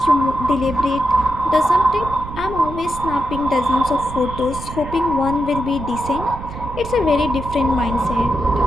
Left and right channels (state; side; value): noise; right; rumble, 11 dB below the sound